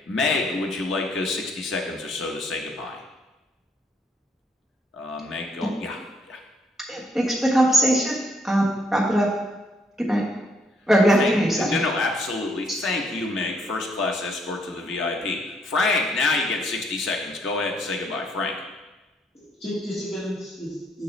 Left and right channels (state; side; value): normal; both; correlation 0.70